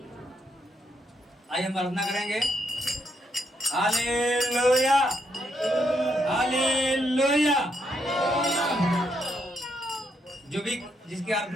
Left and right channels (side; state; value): both; normal; correlation 0.77